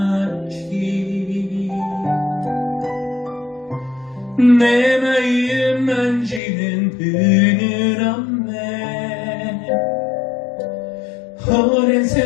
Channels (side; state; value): right; drops out; at 6.4 s